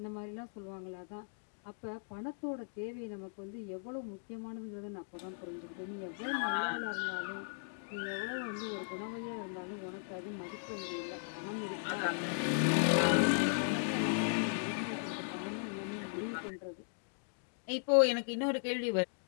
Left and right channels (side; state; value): right; silent; digital silence